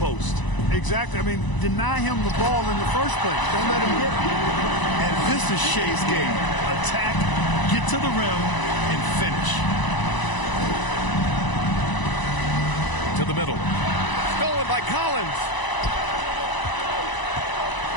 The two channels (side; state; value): right; late; 1.0 ms